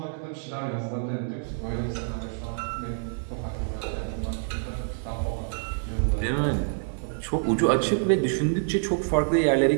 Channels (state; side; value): silent; left; 60 dB below the other